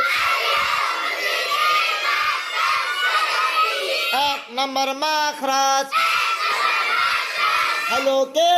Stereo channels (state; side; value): identical; both; correlation 1.00